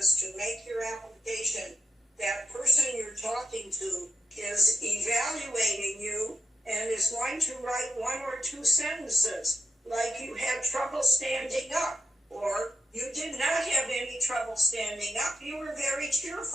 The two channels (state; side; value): normal; both; correlation 0.85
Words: to make your application, that person you're talking to is evaluating you and is going to write one or two sentences, like you had trouble standing up, or you did not have any trouble standing up. You were very